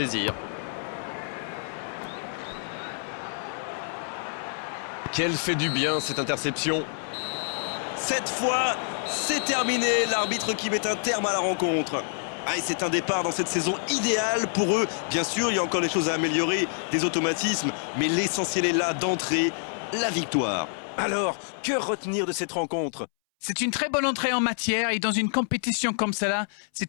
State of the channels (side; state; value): right; silent; 60 dB below the other